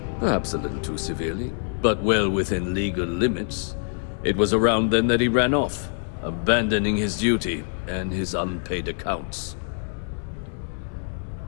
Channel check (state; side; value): silent; right; digital silence